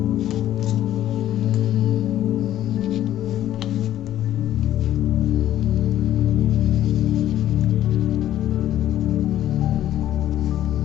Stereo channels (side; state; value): right; quieter; 12.4 dB